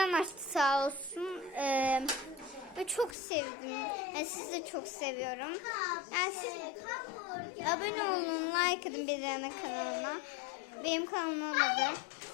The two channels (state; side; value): drops out; right; at 3.2 s